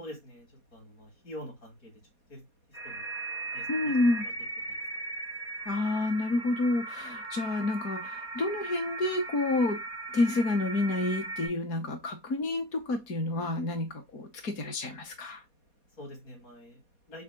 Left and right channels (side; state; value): right; late; 4.2 ms